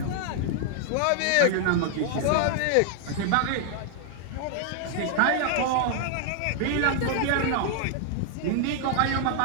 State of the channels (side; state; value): both; different; correlation 0.00